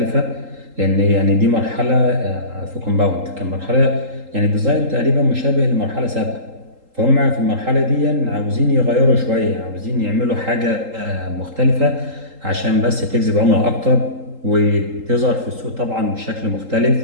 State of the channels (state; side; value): late; left; 3.8 ms